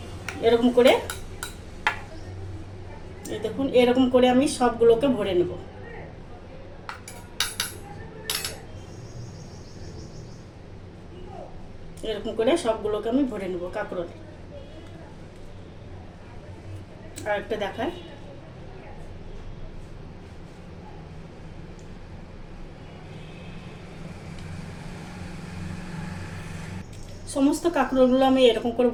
এরকম করে, এই দেখুন এরকম করে আমি সবগুলোকে ভরে নেব। এরকম করে সবগুলোকে আমি ভরে নেব কাঁকরোল। আর একটা দেখায়, সমস্ত কাঁকরোলগুলো আমি এরকম করে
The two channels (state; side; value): identical; both; correlation 1.00